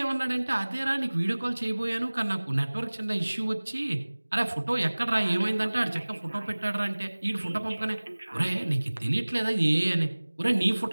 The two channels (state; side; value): inverted; both; correlation -1.00